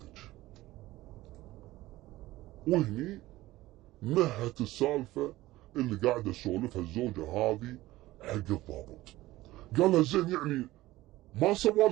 وهني نهت السالفة اللي قاعدة تسولفها الزوجة هذه حق الضابط. قال لها زين يعني ما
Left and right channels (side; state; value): left; quieter; 17.3 dB